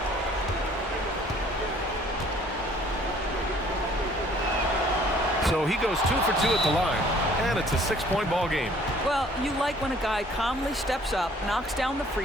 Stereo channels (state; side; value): normal; both; correlation 0.57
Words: So he goes 2 for 2 at the line, and it's a 6-point ball game. Well, you like when a guy calmly steps up, knocks down the